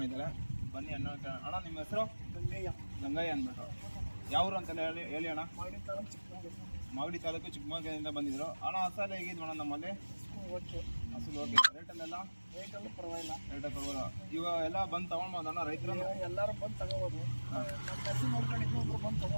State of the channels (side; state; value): both; inverted; correlation -1.00